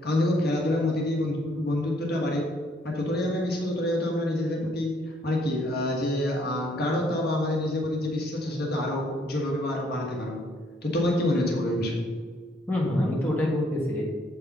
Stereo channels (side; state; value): both; normal; correlation 0.67